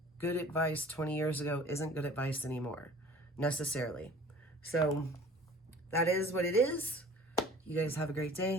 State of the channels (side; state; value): both; normal; correlation 0.46